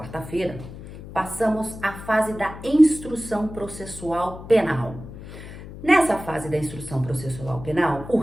passamos à fase da instrução processual penal. Nessa fase da instrução processual penal, o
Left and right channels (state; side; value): noise; left; hum, 13 dB below the sound